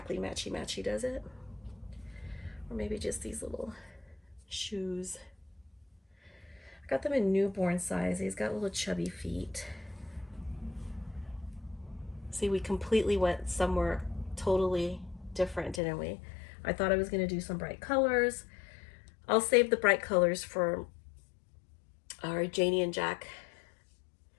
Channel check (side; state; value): right; drops out; at 15.8 s